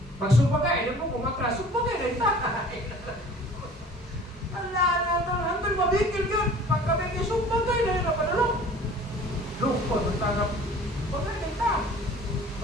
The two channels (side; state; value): both; normal; correlation 0.47